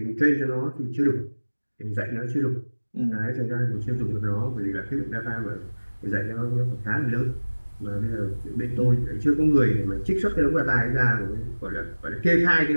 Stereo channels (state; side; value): inverted; both; correlation -1.00